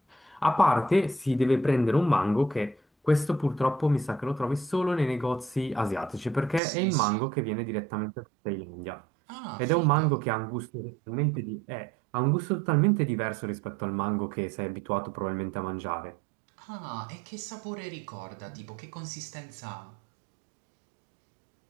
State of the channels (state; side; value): drops out; left; at 6.6 s